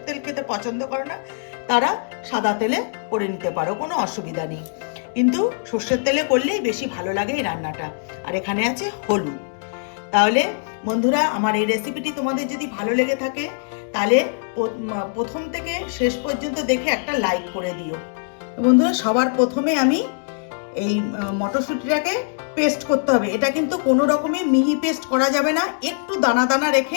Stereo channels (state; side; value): silent; right; digital silence